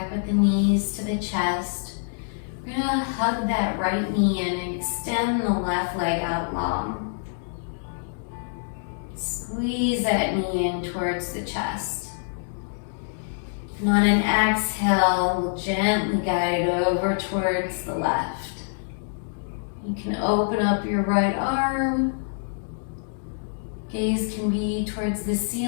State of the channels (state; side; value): silent; right; digital silence